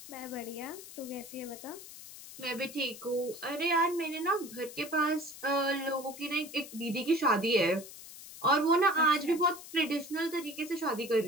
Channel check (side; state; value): left; noise; hiss, 15 dB below the sound